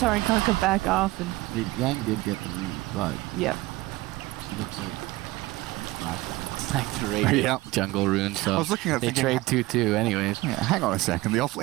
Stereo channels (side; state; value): left; quieter; 19.5 dB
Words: and Kunkka back off, and Yang did get the lead, but yep. he looks like Like the raid jungle rune, so I was looking at they trade 2-2 anyways. Yeah, hang on a second. The